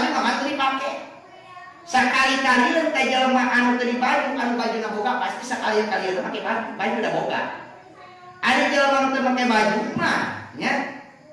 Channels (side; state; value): both; identical; correlation 1.00